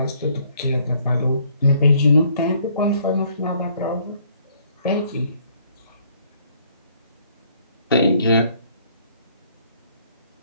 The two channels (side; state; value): both; inverted; correlation -0.64